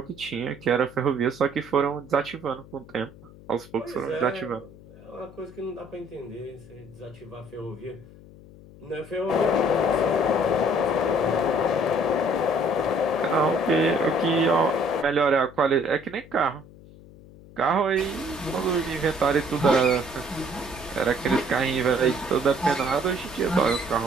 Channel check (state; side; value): noise; left; hum, 21 dB below the sound